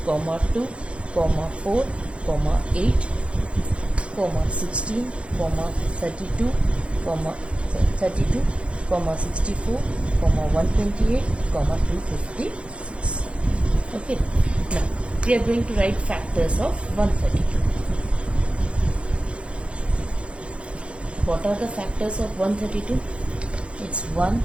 2, 4, 8, 16, 32, 64, 128, 256. Okay, now we are going to write factors of 132. What are the factors of 132? It's 1,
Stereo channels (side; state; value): left; late; 0.060 ms